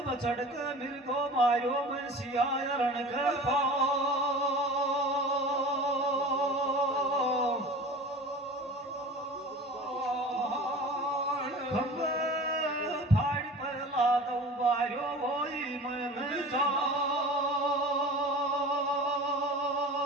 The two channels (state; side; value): normal; both; correlation 0.38